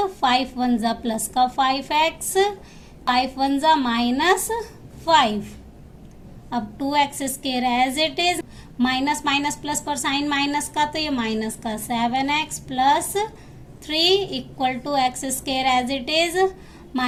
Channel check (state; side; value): identical; both; correlation 1.00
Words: 5 1 जा प्लस का 5x, 5 1 जा -5। अब 2x square as it is, minus minus plus पर साइन माइनस का तो ये माइनस का 7x plus 3 equal to x square as it is,